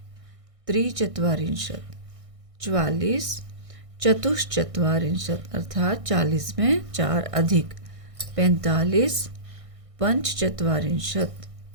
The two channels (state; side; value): late; left; 1.6 ms